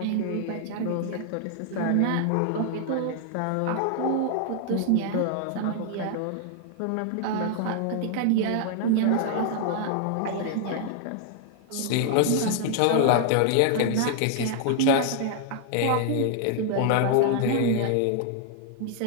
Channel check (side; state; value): both; different; correlation 0.00